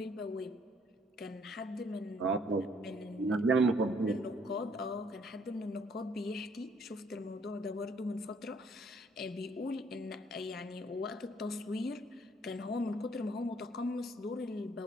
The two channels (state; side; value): normal; both; correlation 0.64